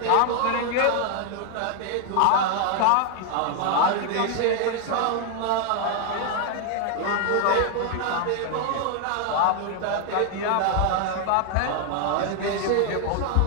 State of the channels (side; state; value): both; different; correlation 0.00